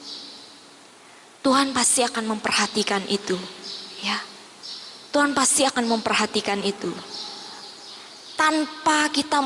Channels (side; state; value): both; identical; correlation 1.00